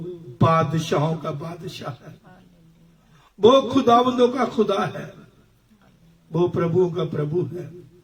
बादशाहों का बादशाह है, वो खुदावंदों का खुदा है, वो प्रभुओं का प्रभु है।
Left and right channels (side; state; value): both; identical; correlation 1.00